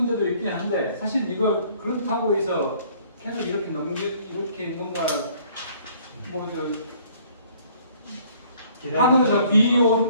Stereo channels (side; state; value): both; inverted; correlation -0.59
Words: 있긴 한데 사실 이거 그렇다고 해서 계속 이렇게 뭔가 하늘에서 비